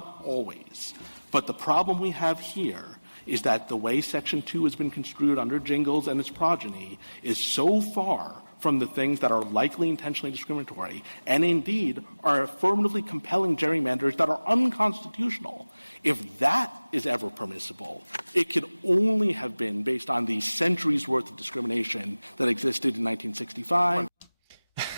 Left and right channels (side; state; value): both; inverted; correlation -1.00